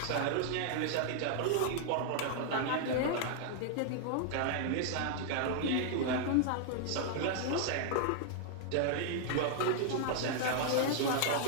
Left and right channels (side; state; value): both; different; correlation -0.01